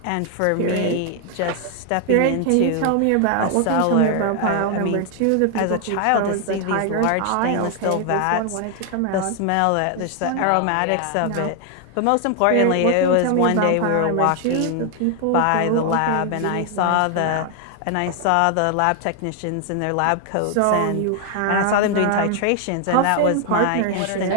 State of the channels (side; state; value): both; different; correlation 0.00